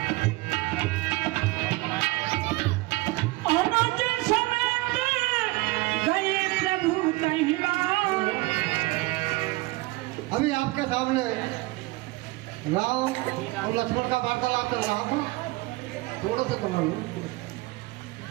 अभी आपके सामने राम और लक्ष्मण का वार्तालाप चल रहा था, थोड़ा सा कमा लो।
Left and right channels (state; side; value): quieter; left; 21.8 dB